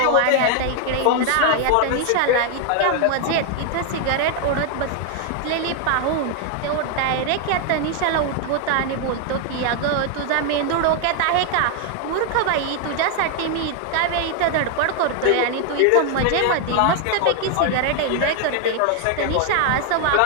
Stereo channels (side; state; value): both; different; correlation 0.00